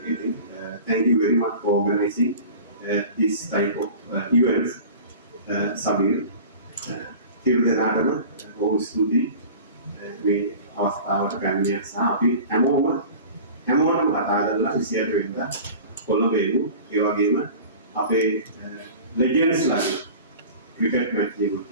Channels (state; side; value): inverted; both; correlation -0.39